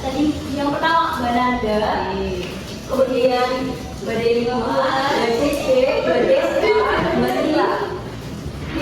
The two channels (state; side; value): identical; both; correlation 1.00